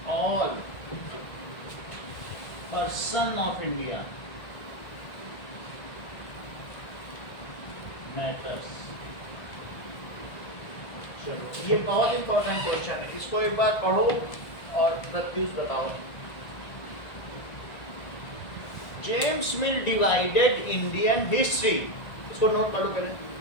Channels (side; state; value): right; late; 1.6 ms